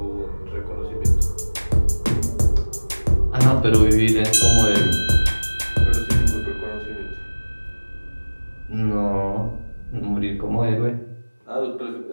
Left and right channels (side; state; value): both; inverted; correlation -1.00